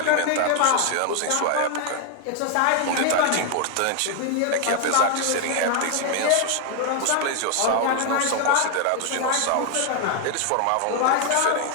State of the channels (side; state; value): both; different; correlation 0.00